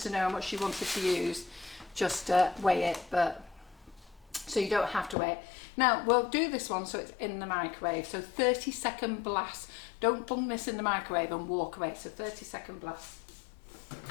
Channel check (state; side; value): drops out; right; at 5.2 s